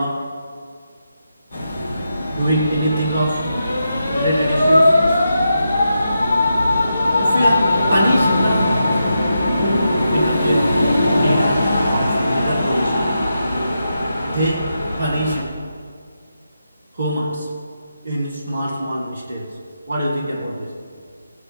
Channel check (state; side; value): inverted; both; correlation -0.86